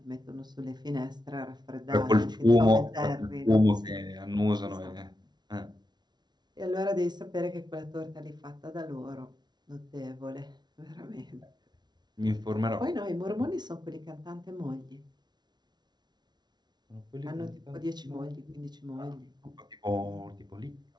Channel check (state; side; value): late; left; 0.20 ms